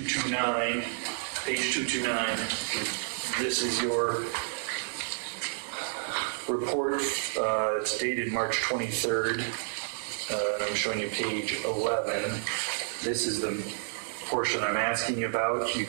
page 229. This is your report. It's dated March 23rd. I'm showing you page 11. This is the portion I'm asking you about. You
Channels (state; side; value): silent; left; digital silence